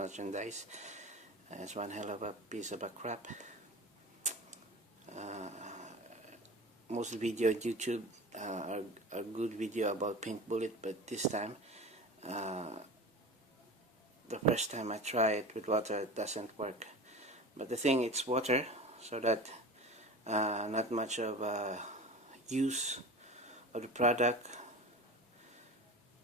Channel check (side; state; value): both; normal; correlation 0.32